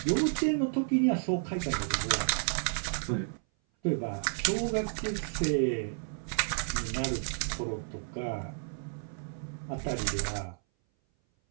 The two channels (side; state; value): left; silent; 57 dB below the other